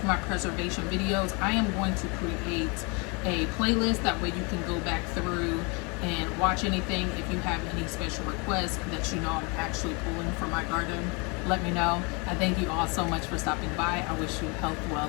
my preservation videos, I am going to create a playlist. That way you can go back through and watch anything. If you have any special requests that you know I'm actually pulling from my garden, let me know. I thank you all so much for stopping by. I wish you health,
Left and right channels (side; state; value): right; quieter; 30.8 dB